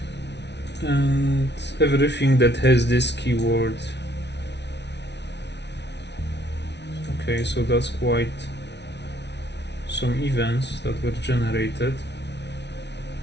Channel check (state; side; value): late; right; 0.50 ms